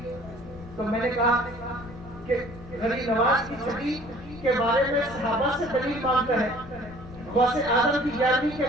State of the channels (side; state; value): left; noise; rumble, 17 dB below the sound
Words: تو میں نے کہا کہ غریب نواز کی 6ٹھی کے بارے میں صحابہ سے دلیل مانگتا ہے، غوث اعظم کی 11ویں